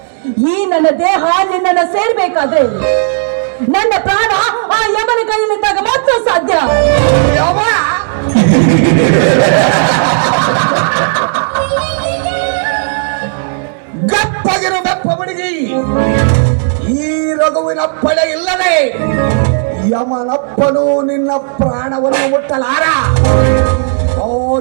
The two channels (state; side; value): silent; left; 61 dB below the other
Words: ಈ ನನ್ನ ದೇಹ ನಿನ್ನನ್ನು ಸೇರ್ಬೇಕಾದ್ರೆ ನನ್ನ ಪ್ರಾಣ ಆ ಯಮನ ಕೈಯಲ್ಲಿದ್ದಾಗ ಮಾತ್ರ ಸಾಧ್ಯ. ಯಮ ಗಪ್ಪಗಿರು ಬೆಪ್ಪ ಹುಡುಗಿ, ಈ ರಘುವಿನಪ್ಪಳೆ ಇಲ್ಲದೆ ಯಮನಪ್ಪನು ನಿನ್ನ ಪ್ರಾಣವನ್ನು ಮುಟ್ಟಲಾರ.